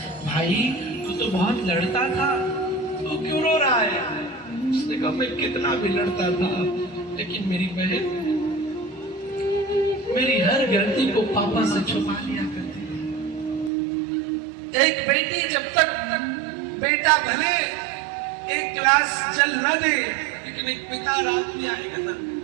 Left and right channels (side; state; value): left; drops out; at 13.7 s